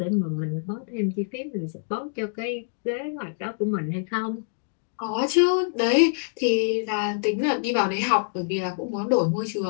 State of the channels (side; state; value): right; silent; digital silence